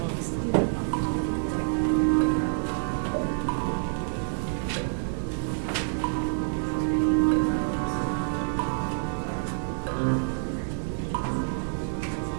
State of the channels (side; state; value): left; silent; digital silence